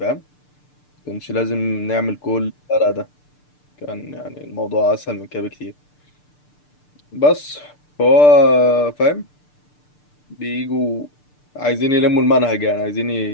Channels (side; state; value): right; late; 6.7 ms